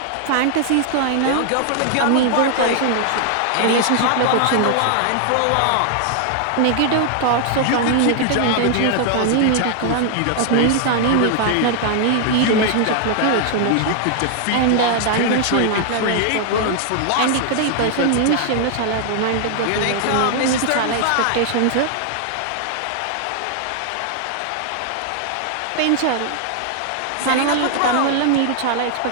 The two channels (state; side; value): different; both; correlation 0.00